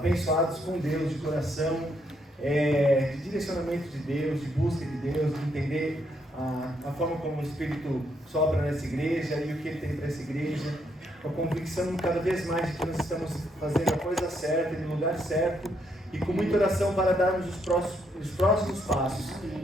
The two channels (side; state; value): both; normal; correlation 0.75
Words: com Deus, de coração, de direcionamento de Deus, de busca de Deus, de entender a forma como o Espírito sopra nessa igreja e o que Ele tem para essa igreja, com a convicção cada vez mais de que nós estamos fazendo a coisa certa, no lugar certo, e com muita oração para darmos os próximos passos,